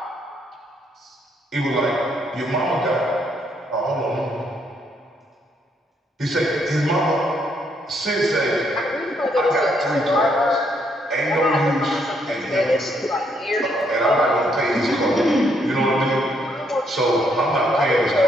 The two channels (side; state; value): both; normal; correlation 0.73